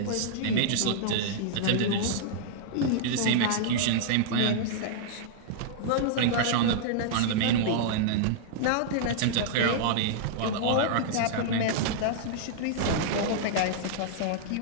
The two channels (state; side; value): different; both; correlation -0.01